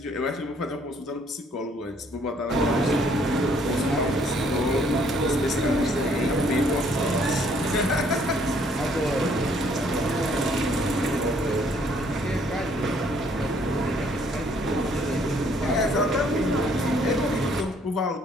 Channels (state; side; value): normal; both; correlation 0.64